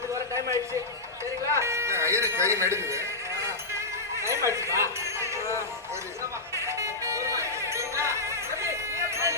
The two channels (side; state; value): right; quieter; 3.0 dB